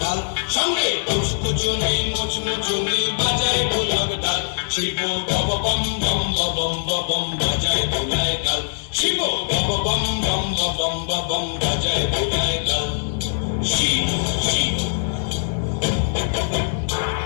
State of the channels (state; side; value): silent; right; 64 dB below the other